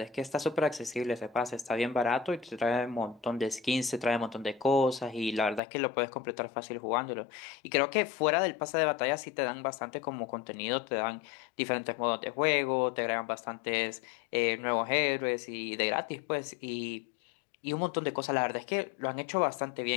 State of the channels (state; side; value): drops out; right; at 5.6 s